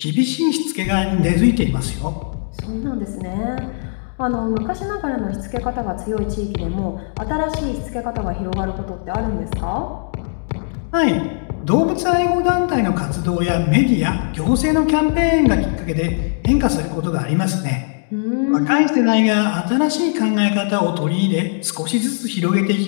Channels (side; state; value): right; silent; digital silence